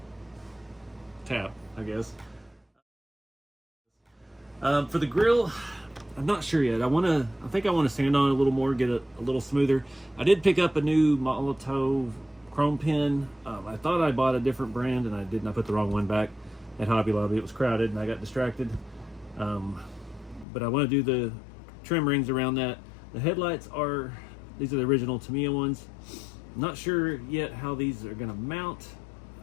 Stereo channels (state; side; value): drops out; right; at 20.5 s